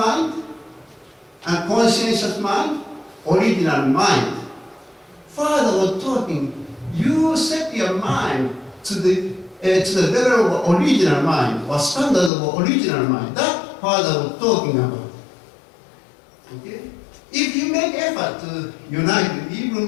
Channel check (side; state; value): right; drops out; at 12.3 s